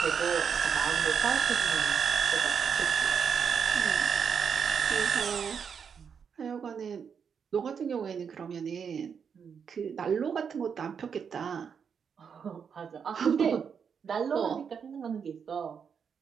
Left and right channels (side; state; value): left; quieter; 6.8 dB